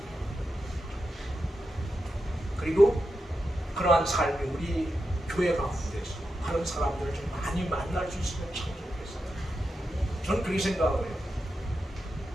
그리고 그러한 삶이 우리 교회 가운데서 그런 사람들을 좀 많이 만날 수 있으면 참 좋겠어요. 저는 그렇게 생각을 해요.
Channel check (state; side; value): normal; both; correlation 0.88